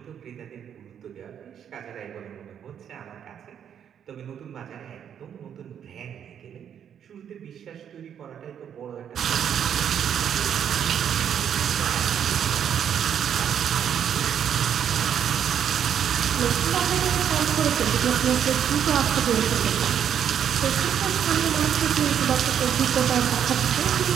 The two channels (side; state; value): left; quieter; 8.8 dB